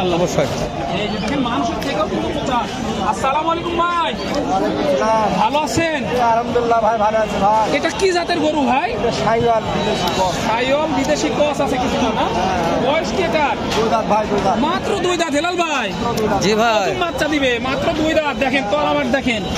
অবশ্যই। এই যে দেখেন মানুষের থেকেও কিন্তু পোচা। আসসালামু আলাইকুম ভাই, ভালো আছেন? আলহামদুলিল্লাহ ভাই, ভালো আছে ভাই। এটা কি জাতের গরু ভাই? সাইওয়াল বিদেশি ক্রস। সাইওয়াল বিদেশি ক্রস আছে কিছু না? বয়স কি এটার? 2 দাঁত ভাই, 2 দাঁত। মাত্র 2 দাঁত। হেলাল ভাই, জি ভাই, নতুন বাচ্চা দিবে, মাত্র 2 দাঁত। দেখেন তলাবাট দেখেন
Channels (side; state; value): both; identical; correlation 1.00